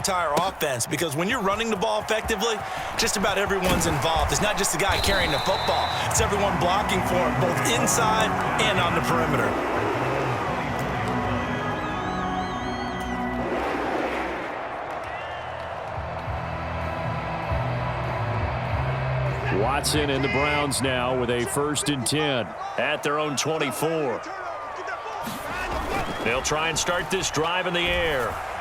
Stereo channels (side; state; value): both; identical; correlation 1.00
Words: offense because when you're running the ball effectively, just about everyone's involved. It's not just the guy carrying the football. It's everyone blocking for him, both inside and on the perimeter. Watson and the Browns now with a 1st and 10 at their own 24. They'll try and start this drive in the air.